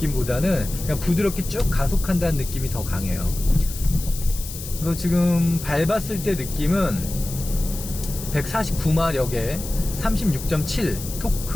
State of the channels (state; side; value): noise; left; hiss, 11 dB below the sound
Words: 그냥 부드럽게 쭉 가속한다는 느낌이 더 강해요. 그래서 지금 밟았을 때 느낌은 149마력에 36.7